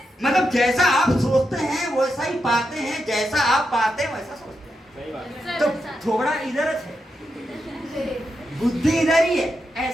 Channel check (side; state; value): both; normal; correlation 0.86